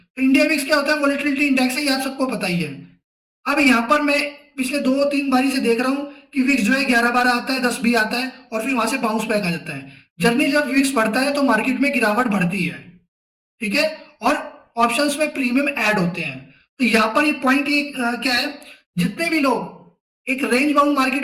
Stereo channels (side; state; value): both; identical; correlation 1.00